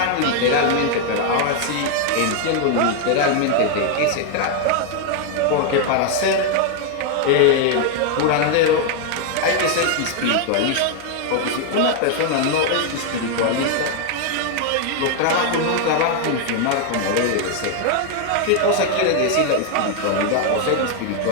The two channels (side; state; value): both; different; correlation 0.00